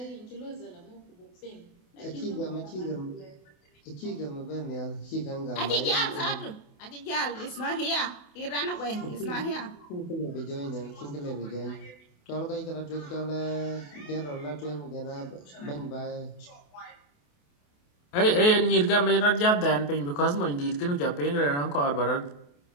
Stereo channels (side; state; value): right; late; 28 ms